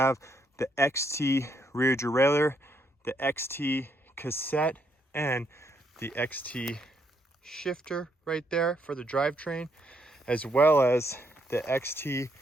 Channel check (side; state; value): both; normal; correlation 0.74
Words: the XT rear derailleur, the XT cassette, and the XT shifter right there for the drivetrain, as well as the XT